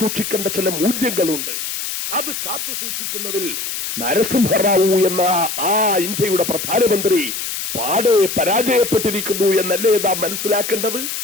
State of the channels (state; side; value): noise; left; hiss, 5 dB below the sound